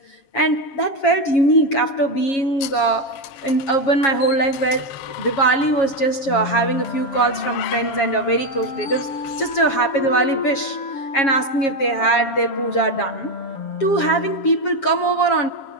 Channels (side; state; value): right; late; 7.3 ms